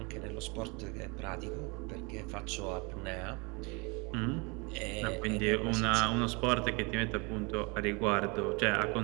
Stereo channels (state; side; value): quieter; left; 29.4 dB